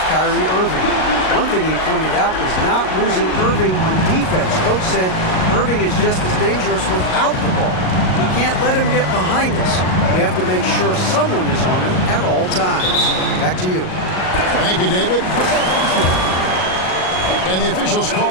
Kyrie Irving. One thing he pointed out was not losing Irving on defense. Coach said Irving is just as dangerous without the ball. We can't let him get behind us. We have to make sure someone is on him at all times. Back to you. Thank you, David. And the officials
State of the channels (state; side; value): late; right; 38 ms